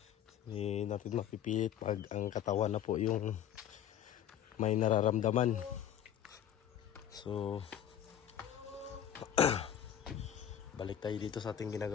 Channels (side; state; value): right; quieter; 10.1 dB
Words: Hindi natin mapipilit pag ang katawan na po yung may nararamdaman. So balik tayo dito sa ating